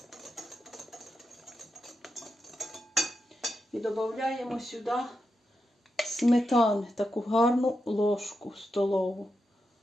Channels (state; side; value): normal; both; correlation 0.87